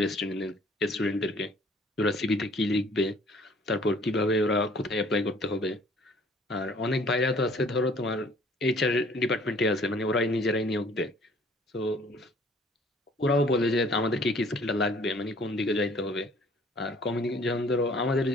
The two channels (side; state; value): both; normal; correlation 0.56